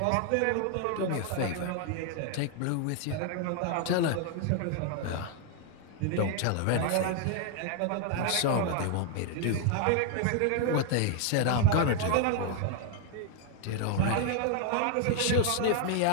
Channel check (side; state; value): both; different; correlation 0.00